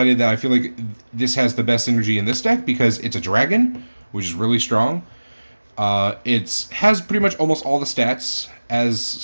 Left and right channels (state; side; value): inverted; both; correlation -1.00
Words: that I feel like this has the best synergy in this deck because it's a dragon, which is really strong. It has pretty much almost all the stats as